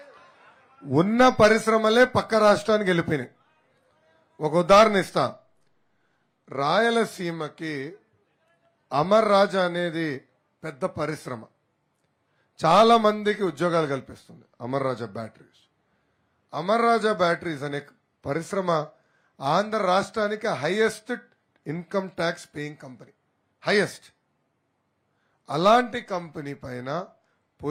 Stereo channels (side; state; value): both; identical; correlation 1.00